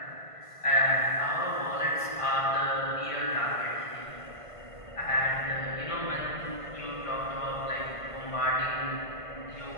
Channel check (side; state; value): right; late; 1.5 ms